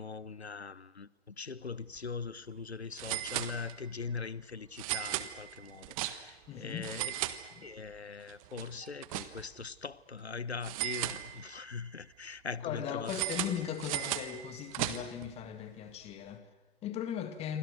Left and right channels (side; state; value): both; normal; correlation 0.03